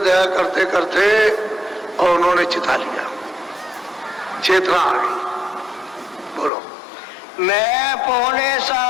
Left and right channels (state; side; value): drops out; right; at 6.5 s